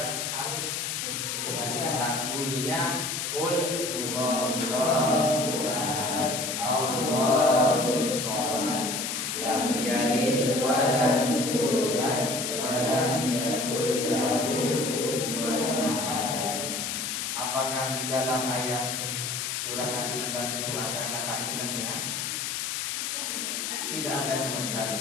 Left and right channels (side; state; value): left; noise; hiss, 2 dB below the sound